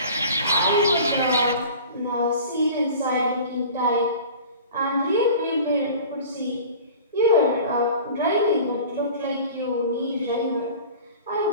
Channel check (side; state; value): both; inverted; correlation -0.41